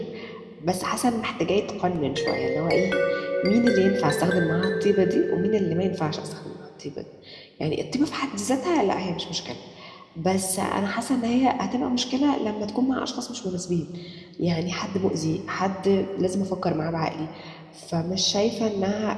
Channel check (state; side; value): identical; both; correlation 1.00